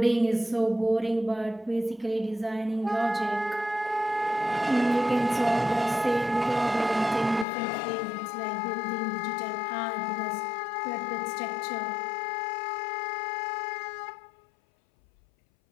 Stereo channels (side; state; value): right; drops out; at 7.5 s